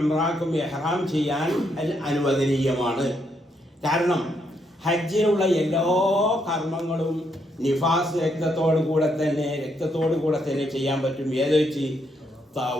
ഇഹ്റാം ചെയ്യാൻ അനുവദനീയമാണ്. കാരണം ഹജ്ജിനുള്ള എല്ലാ കർമ്മങ്ങളും നിഫാസ് രക്തത്തോടു കൂടെ തന്നെ ചെയ്യാൻ പറ്റും. ഏത് വെച്ച്?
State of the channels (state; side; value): normal; both; correlation 0.76